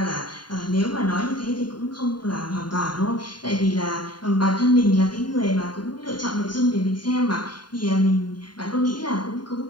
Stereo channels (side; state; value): right; late; 0.71 ms